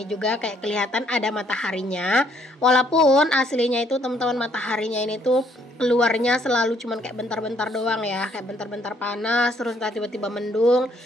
juga kayak kelihatan ada mataharinya. Walaupun aslinya itu teman-teman mataharinya ini tuh keluarnya selalu cuman kayak bentar-bentar doang ya. Kayak bentar-bentar panas, terus tiba-tiba mendung.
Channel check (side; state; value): both; normal; correlation 0.67